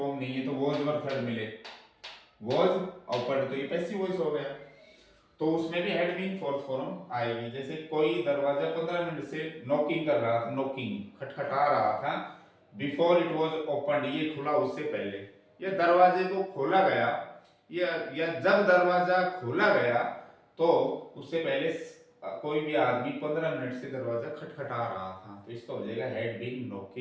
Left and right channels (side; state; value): both; identical; correlation 1.00